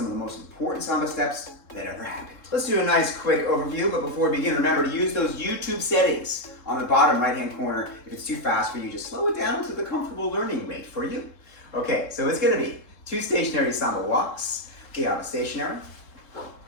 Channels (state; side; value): late; right; 3.7 ms